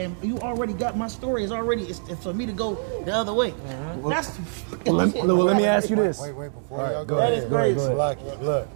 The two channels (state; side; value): silent; left; 62 dB below the other